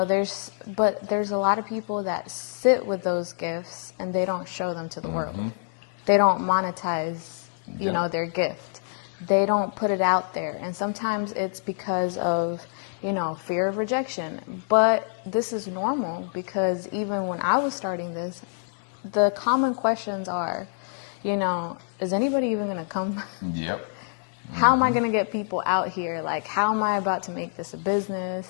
there's a lot of people that sit with those gifts and they don't show them to the world. They don't monetize, their gift. They don't put it out there. And sometimes it's because of, fear of rejection. But this is normal because even when I was starting this, the common questions are, is anybody even going to come? Yep. How am I going to get people out here? Like, how am I about to make this a business?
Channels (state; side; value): silent; right; digital silence